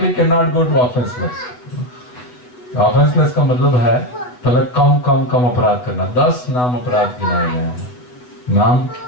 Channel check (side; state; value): right; late; 8.1 ms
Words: go to offenseless. Offenseless का मतलब है पहले कम अपराध करना. 10 नाम अपराध गिनाए गए हैं. नाम